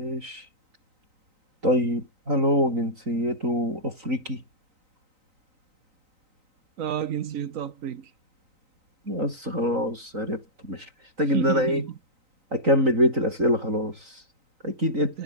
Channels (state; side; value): late; left; 3.9 ms